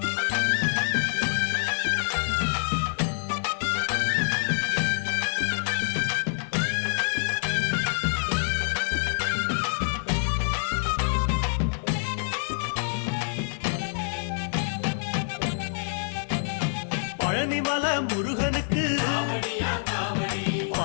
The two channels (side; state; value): right; silent; 60 dB below the other